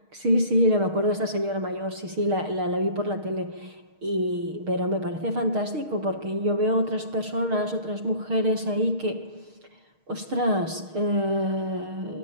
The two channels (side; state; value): left; late; 6.5 ms